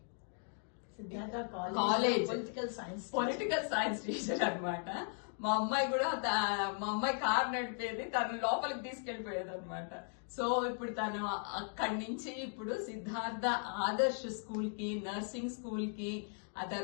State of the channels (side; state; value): right; silent; 53 dB below the other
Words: college political science teacher అన్నమాట. మా అమ్మాయి కూడా మా అమ్మాయి కార్ నడిపేది, తను లోపలికి తీసుకెళ్లిపోయేది అనమాట. సో ఇప్పుడు తను అక్కడి నుంచి ఇప్పుడు సిద్ధార్థ ఆదర్శ్ స్కూల్ కి, నర్సింగ్ స్కూల్ కి, ఆ